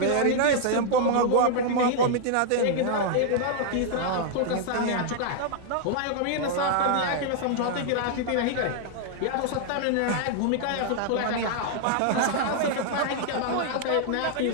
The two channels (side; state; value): both; different; correlation 0.00